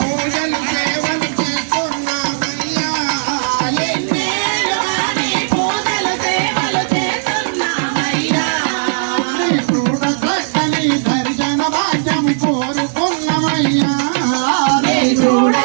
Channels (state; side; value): silent; left; digital silence